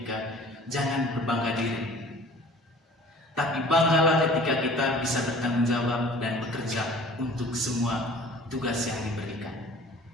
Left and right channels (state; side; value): normal; both; correlation 0.47